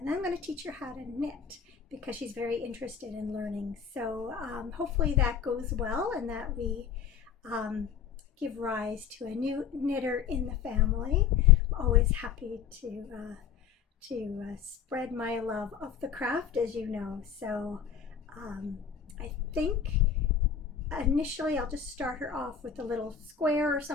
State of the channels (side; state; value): right; quieter; 7.5 dB